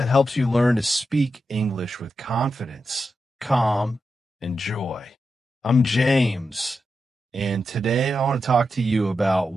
helps you learn to speak English with confidence, calm, and joy. I'm James, and today I want to talk to you about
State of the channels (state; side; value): normal; both; correlation 0.88